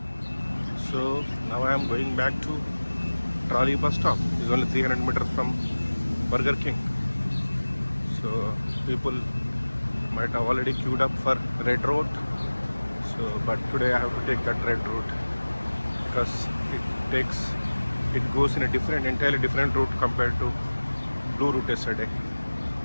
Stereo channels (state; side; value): inverted; both; correlation -1.00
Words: So now I am going back to Trolley bus stop. It's only 300 meters from Burger King. So people might have already queued up for red route. So, but today I have to take that red route because it goes in a entirely different route compared to blue route yesterday.